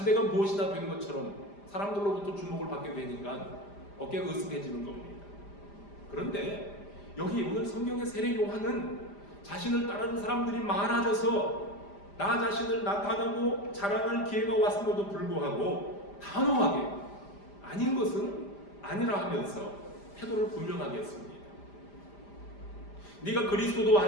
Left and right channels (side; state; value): right; late; 5.0 ms